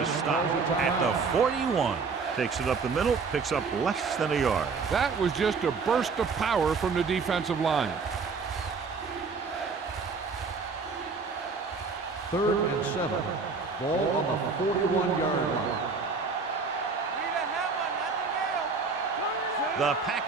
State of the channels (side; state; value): left; quieter; 4.8 dB